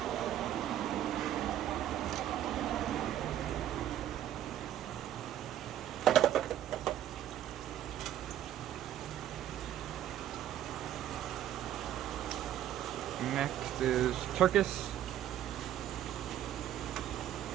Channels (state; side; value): quieter; left; 11.6 dB